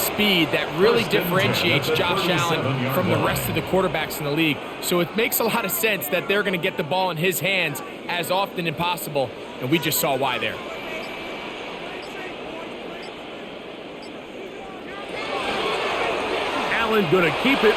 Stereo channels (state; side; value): identical; both; correlation 1.00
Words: that really differentiates Josh Allen from the rest of the quarterbacks in the league. So it makes a lot of sense that they're going to get the ball in his hands as often as possible, and we just saw why there. Allen going to keep it